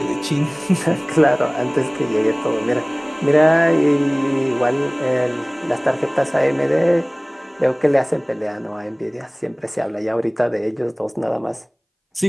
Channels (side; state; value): both; identical; correlation 1.00